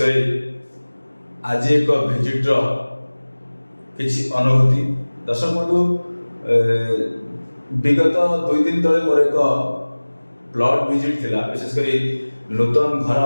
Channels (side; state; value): both; inverted; correlation -1.00